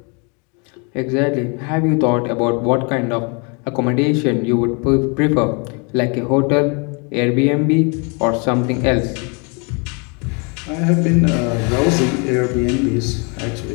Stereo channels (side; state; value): right; quieter; 33.5 dB